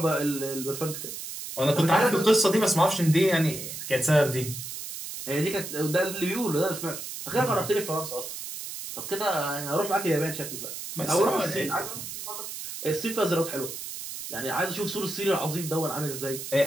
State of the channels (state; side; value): noise; right; hiss, 8 dB below the sound